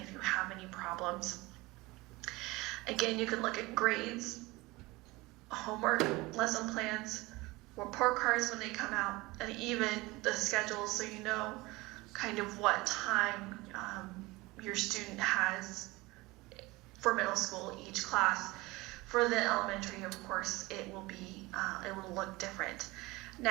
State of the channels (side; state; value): left; quieter; 21.7 dB